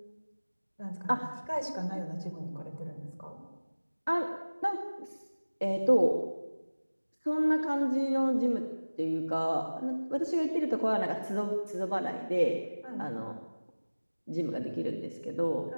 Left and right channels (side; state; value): both; inverted; correlation -1.00